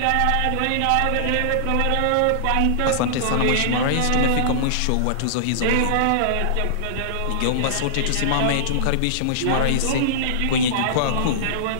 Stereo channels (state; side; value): different; both; correlation -0.02